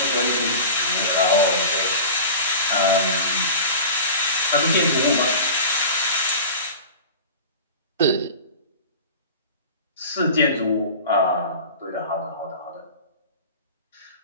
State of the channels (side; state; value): both; inverted; correlation -0.35